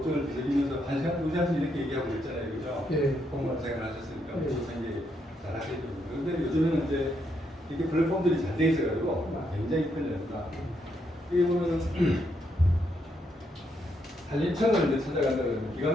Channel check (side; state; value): both; normal; correlation 0.77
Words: 뒤적이면서 1시간, 2시간씩 이렇게 얘기하고 있잖아요. 그죠? 예. 공무원 생활 하셨으니까 예. 무슨 생각 잘 하시죠. 그런데 요즘에는 이제 이렇게 플랫폼들이 잘 돼 있어가지고 굉장히 편리합니다. 이게 보면은 산림청을 이제 찾아간다 그러면